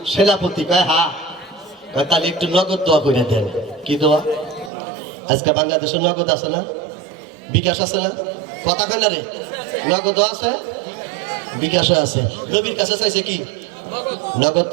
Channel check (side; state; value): left; drops out; at 4.7 s